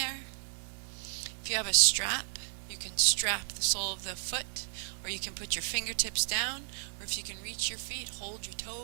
If you have a strap, you can strap the sole of the foot, or you can put your fingertips down, or if you can reach your feet, hold your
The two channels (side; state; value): left; silent; digital silence